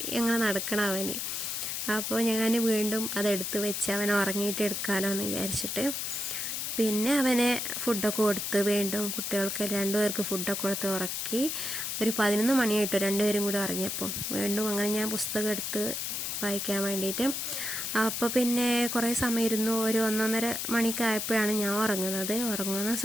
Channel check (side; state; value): left; noise; hiss, 3 dB below the sound